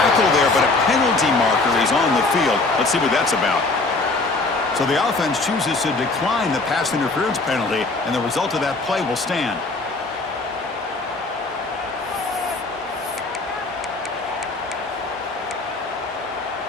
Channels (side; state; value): right; quieter; 3.4 dB